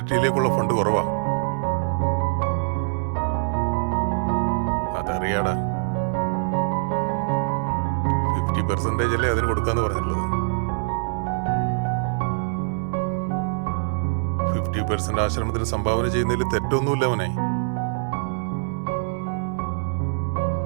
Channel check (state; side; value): silent; left; digital silence